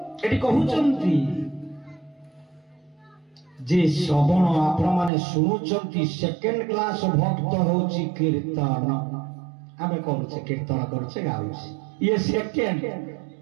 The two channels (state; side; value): drops out; left; at 5.1 s